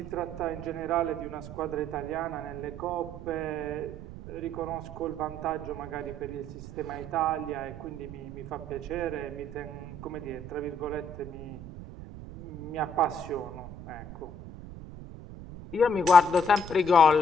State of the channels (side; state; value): right; noise; rumble, 12 dB below the sound